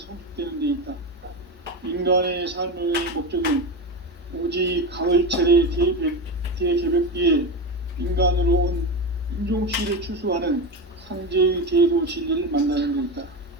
데 있다. 인간의 삶의 목적은 오직 가을철의 대개벽기에 인간으로 온 인종시를 추수하는 상제의 제도 진리를 만나는 데 있다.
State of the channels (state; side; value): normal; both; correlation 0.19